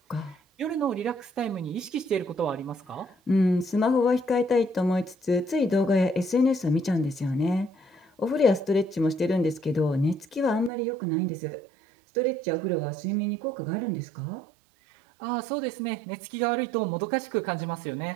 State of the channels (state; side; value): drops out; left; at 10.7 s